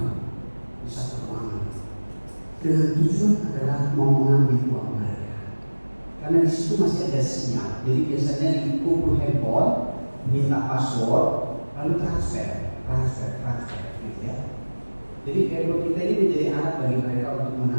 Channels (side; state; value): both; inverted; correlation -1.00